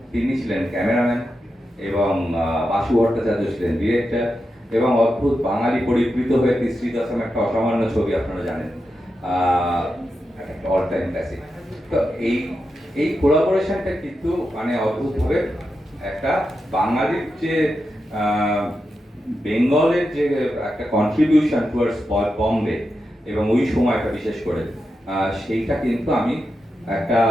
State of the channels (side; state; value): both; normal; correlation 0.88